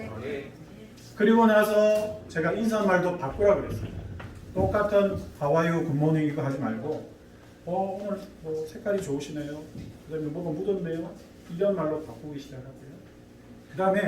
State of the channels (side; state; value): both; identical; correlation 1.00